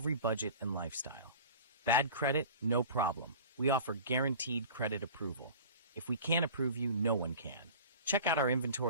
budget and lifestyle. Bad credit? No problem. We offer guaranteed credit approval. If we can't approve you, no one can. Check out our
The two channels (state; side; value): inverted; both; correlation -0.39